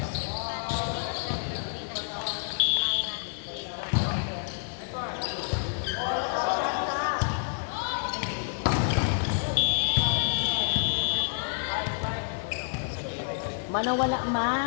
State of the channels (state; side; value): silent; right; digital silence